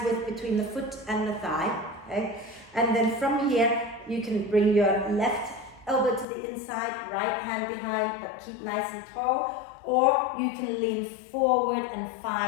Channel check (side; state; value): right; drops out; at 6.2 s